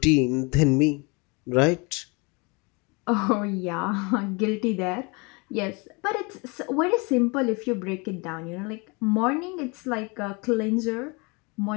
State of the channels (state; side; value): quieter; right; 29.2 dB